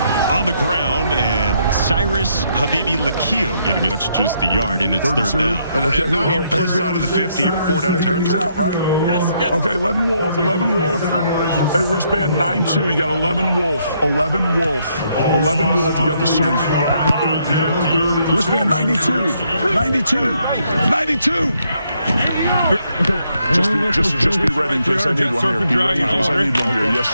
On the ground, and Cyrus Habibi Lakio getting it. That's just the yard, and it's 3rd down. And now you're plus side of the 50. You're 4-down territory. Out, right? Yes. Okay, 11 Wolf. Hey, wristband 9-2. You got 11 Wolf. 11 Wolf. You got the swing. Wristband 92. 92. Just be ready in case I need one here. Be ready in case I need one here. Yes,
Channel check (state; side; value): inverted; both; correlation -0.74